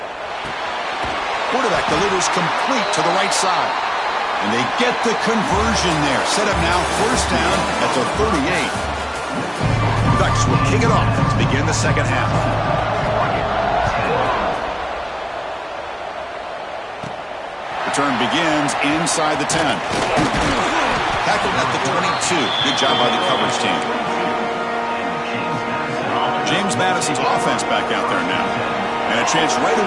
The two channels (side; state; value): both; identical; correlation 1.00